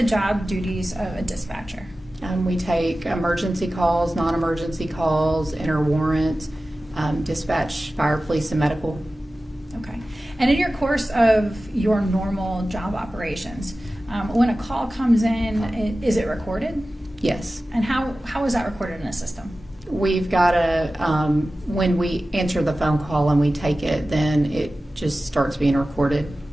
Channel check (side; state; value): both; normal; correlation 0.95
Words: job duties of a dispatcher? We take emergency calls, non-emergency calls, enter warrants, dispatch fire, police, and medical. Okay. And in your course of your normal job operations, when a call comes in, is it recorded? Yes. And how is that recorded in a system? We've got when we answer the phone call and we take it, then it just starts being recorded.